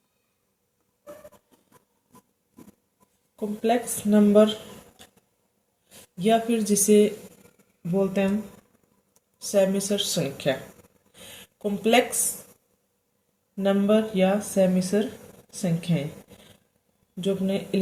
कॉम्प्लेक्स नंबर या फिर जिसे बोलते हैं हम सेमिसर संख्या। कॉम्प्लेक्स नंबर या सेमिसर संख्याएं जो अपने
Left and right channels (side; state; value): both; identical; correlation 1.00